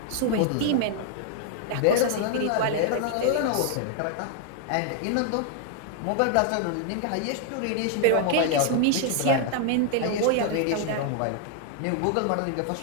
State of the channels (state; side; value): different; both; correlation 0.00